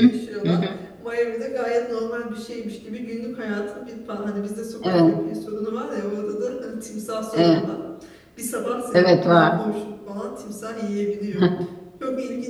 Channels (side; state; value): both; identical; correlation 1.00